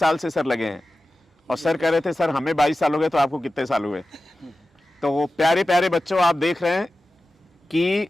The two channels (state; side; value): normal; both; correlation 0.95